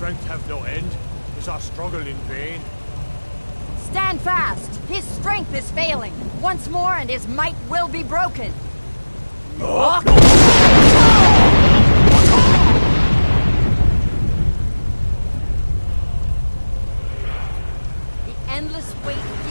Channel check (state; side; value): inverted; both; correlation -1.00